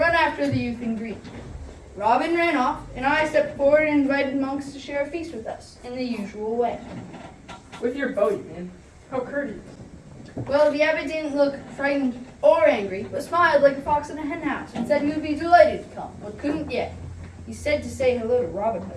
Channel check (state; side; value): identical; both; correlation 1.00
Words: after the youth in green. Robin ran off, and I stepped forward and invited monks to share a feast with us in the usual way. With your bow, you mean? How courteous. Well, the abbot didn't look frightened or angry, but smiled like a fox in a henhouse and said he would be delighted to come, but couldn't yet. He said to say hello to Robin